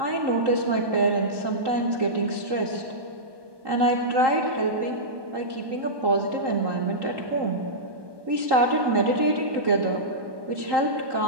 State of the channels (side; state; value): left; late; 1.2 ms